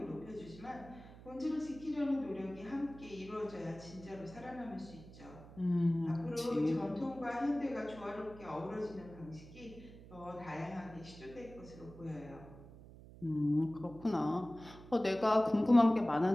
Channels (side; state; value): right; noise; hum, 18 dB below the sound